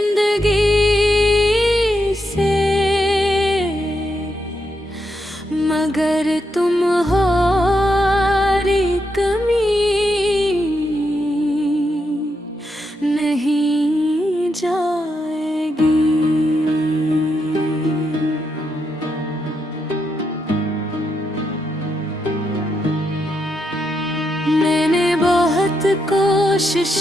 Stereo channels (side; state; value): both; normal; correlation 0.82